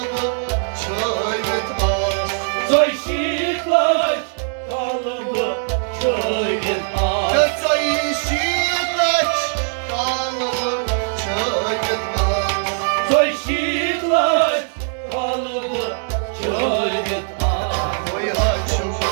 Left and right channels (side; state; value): left; silent; 62 dB below the other